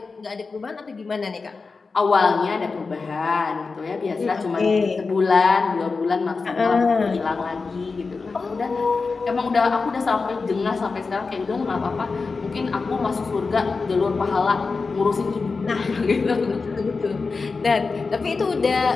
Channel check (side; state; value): right; quieter; 4.4 dB